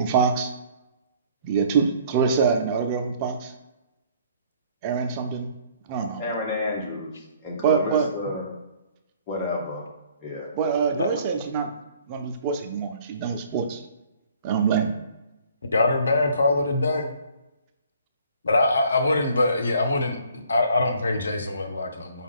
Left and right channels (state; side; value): inverted; both; correlation -0.57